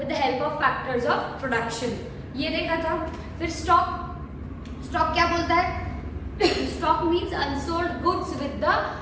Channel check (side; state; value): both; identical; correlation 1.00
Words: the help of factors of production, ये देखा था। फिर स्टॉक क्या बोलता है? Stock means unsold goods with the